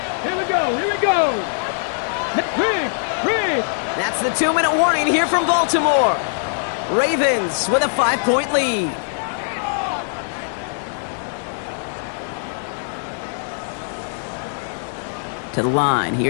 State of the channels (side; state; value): right; silent; 62 dB below the other